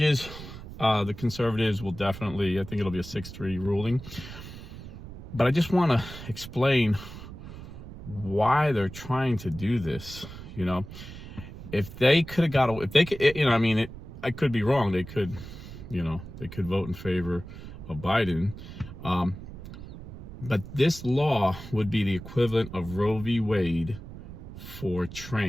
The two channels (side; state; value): right; noise; rumble, 13 dB below the sound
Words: the conservatives will definitely, I think it'll be a 6-3 ruling. But I just want to explain why they're trying to do this. You know, if they could have got away, if they could, I could be wrong. They could vote in favor of Biden. But this law would be the equivalent of Roe v. Wade for